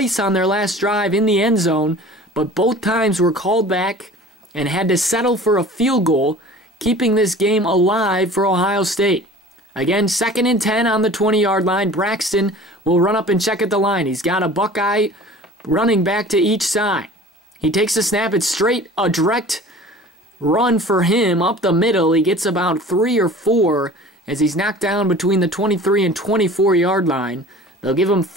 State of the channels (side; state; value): both; normal; correlation 0.43